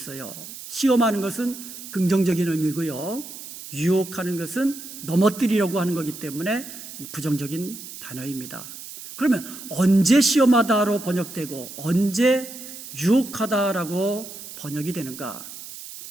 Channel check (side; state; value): right; noise; hiss, 13 dB below the sound